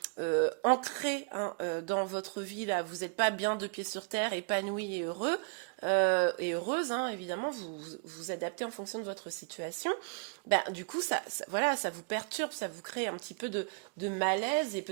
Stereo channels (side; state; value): left; quieter; 39.1 dB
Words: ancré hein, dans votre vie, là, vous n'êtes pas bien de pied sur terre, épanoui et heureux, et heureuse, hein, évidemment, vous vous adaptez en fonction de votre situation. Ben, du coup, voilà, ça vous perturbe, ça vous crée un petit peu de malaise, et